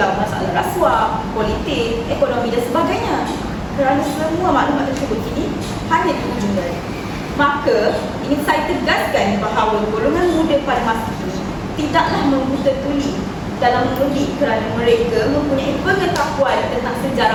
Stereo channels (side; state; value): both; identical; correlation 1.00